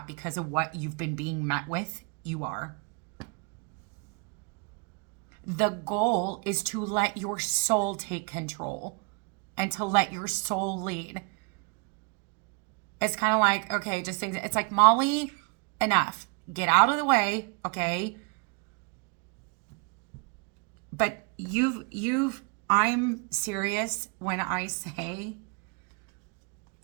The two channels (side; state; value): left; quieter; 32.3 dB